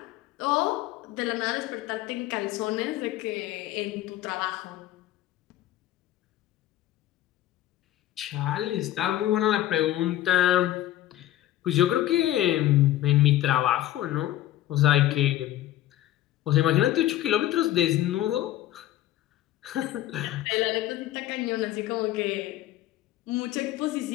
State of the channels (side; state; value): right; quieter; 14.0 dB